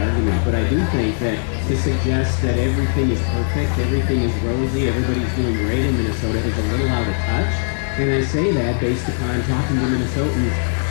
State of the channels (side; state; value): right; silent; digital silence